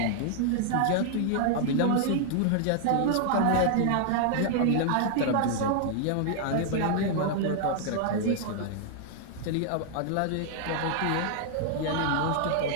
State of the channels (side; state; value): both; different; correlation -0.01